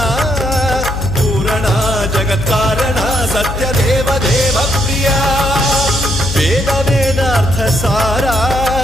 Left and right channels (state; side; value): noise; left; hum, 6 dB below the sound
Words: पूरणा जगत्कारणा सत्यदेव देव प्रिया वेद वेदार्थ सारा